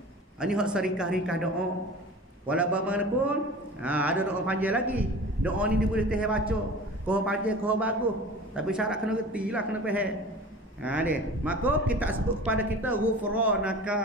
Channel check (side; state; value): both; normal; correlation 0.39